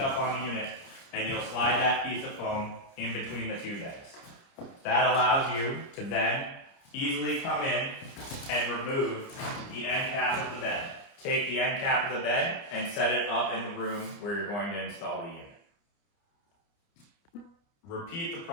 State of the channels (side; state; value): right; late; 30 ms